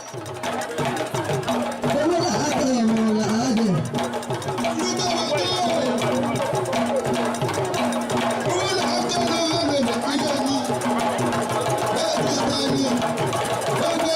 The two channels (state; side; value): identical; both; correlation 1.00